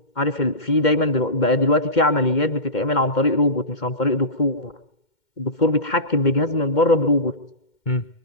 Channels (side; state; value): right; late; 2.1 ms